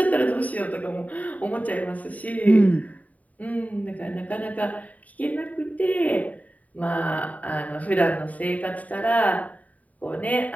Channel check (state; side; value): late; right; 0.071 ms